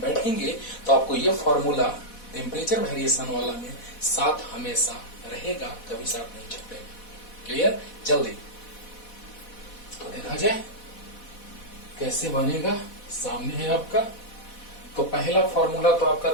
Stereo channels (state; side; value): late; right; 4.1 ms